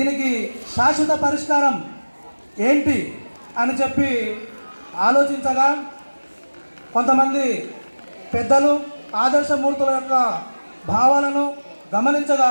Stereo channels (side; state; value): both; inverted; correlation -1.00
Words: శాశ్వత పరిష్కారం ఏంటి అని చెప్పి ఆలోచించగా, కొంతమంది పెద్దలు ఆదర్శమూర్తుల యొక్క భావాలను